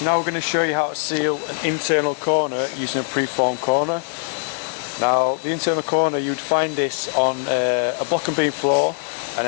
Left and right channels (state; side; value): silent; right; digital silence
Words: now we're going to show you how to seal an internal corner using a preformed corner. Now, the internal corner, you'd find this on a block and beam floor, and